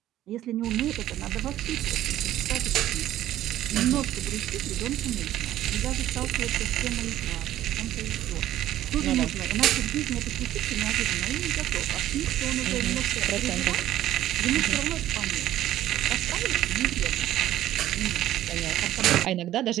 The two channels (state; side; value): quieter; left; 13.3 dB